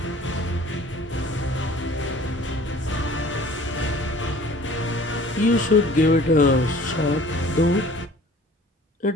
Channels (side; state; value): both; normal; correlation 0.49